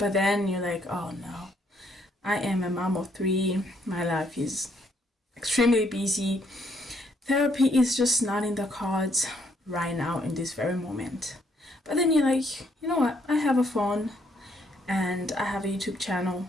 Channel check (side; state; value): both; normal; correlation 0.70